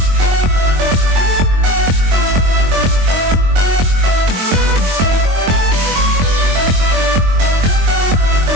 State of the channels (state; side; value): late; left; 22 ms